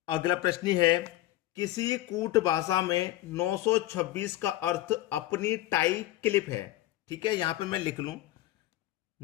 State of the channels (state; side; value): quieter; right; 15.5 dB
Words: अगला प्रश्न है, किसी कूट भाषा में 926 का अर्थ अपनी टाई क्लिप है। ठीक है, यहां पे मैं लिख लूं